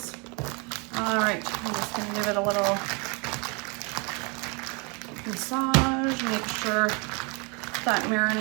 All right, I'm just gonna give it a little massage. Make sure that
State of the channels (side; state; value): left; quieter; 31.8 dB